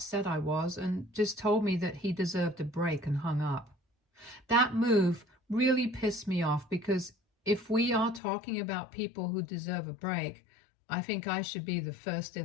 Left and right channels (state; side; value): drops out; right; at 8.2 s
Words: I was and just told me that he deserved a break and hung up. That move really pissed me off because if we are talking about people who deserve a break, I think I should be the first